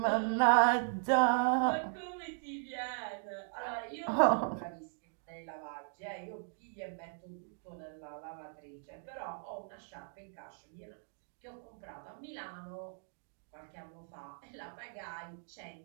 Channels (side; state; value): left; silent; digital silence